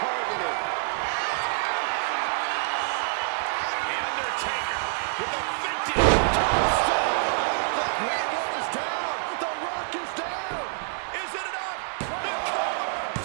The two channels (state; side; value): silent; left; digital silence